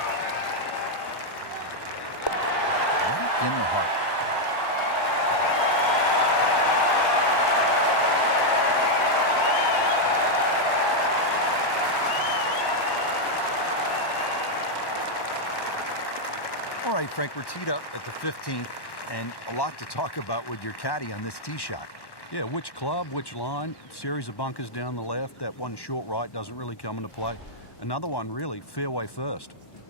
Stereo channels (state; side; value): late; right; 1.1 ms